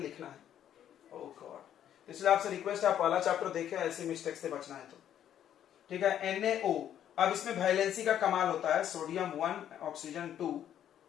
है। ओह गॉड, इसलिए आपसे रिक्वेस्ट है आप पहला चैप्टर देखें, ऐसी मिस्टेक से बचना है तो। ठीक है, NaO। अब इसमें वैलेंसी का कमाल होता है, सोडियम 1 ऑक्सीजन 2,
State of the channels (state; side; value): quieter; right; 10.4 dB